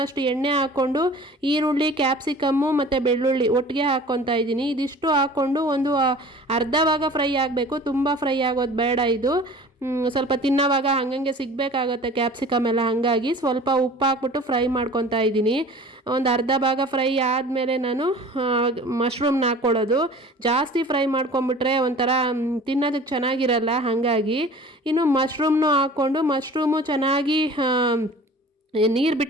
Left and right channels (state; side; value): normal; both; correlation 0.43